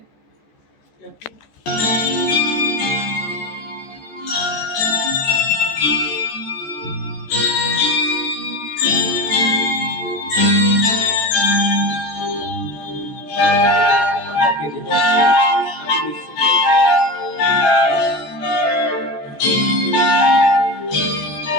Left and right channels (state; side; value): late; right; 14 ms